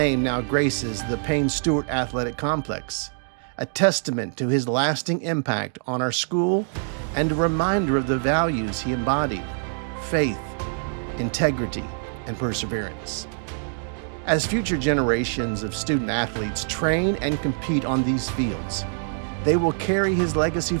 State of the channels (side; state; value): left; silent; digital silence